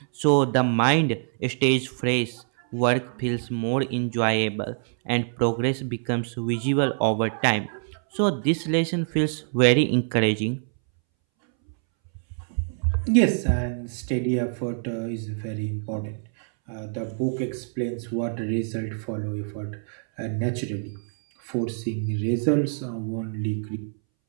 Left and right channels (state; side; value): silent; left; 61 dB below the other